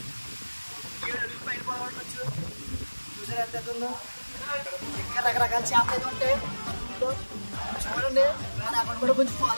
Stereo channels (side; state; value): both; inverted; correlation -1.00